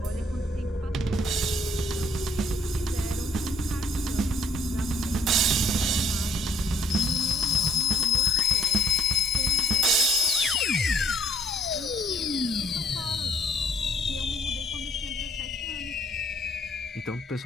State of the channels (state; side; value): normal; both; correlation 0.64